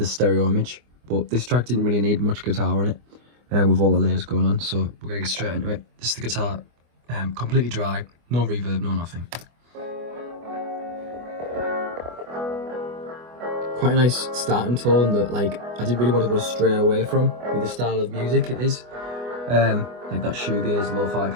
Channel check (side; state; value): left; late; 24 ms